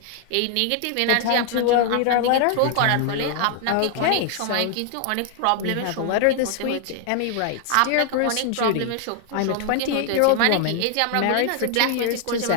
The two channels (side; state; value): both; different; correlation 0.00